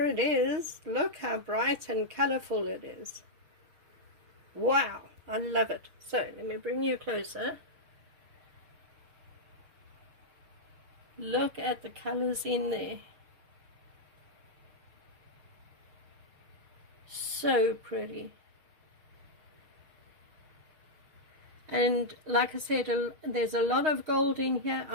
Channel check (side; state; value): left; late; 6.4 ms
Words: it is. Look how bright and colorful it is. Wow, I love it. So let me bring you closer. Look at the colors in there. So pretty. And like I said, there's a lot of gold in here.